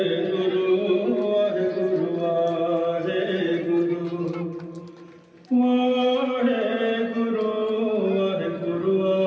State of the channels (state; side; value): identical; both; correlation 1.00